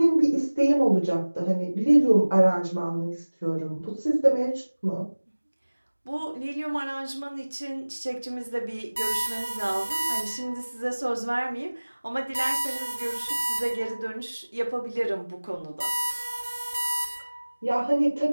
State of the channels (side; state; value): both; inverted; correlation -1.00